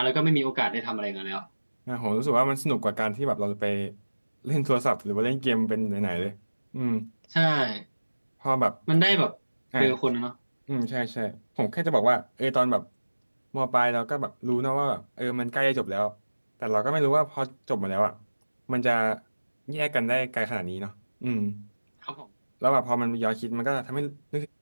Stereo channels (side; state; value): both; inverted; correlation -1.00